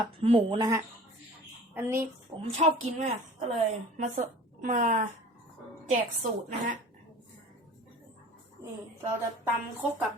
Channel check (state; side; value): normal; both; correlation 0.43